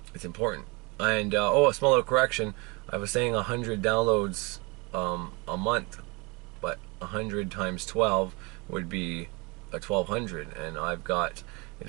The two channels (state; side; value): quieter; left; 28.1 dB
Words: And oh, a small little correction. I was saying 100 downloads a month, but 100 times 12 would be a 1,200, and I've got,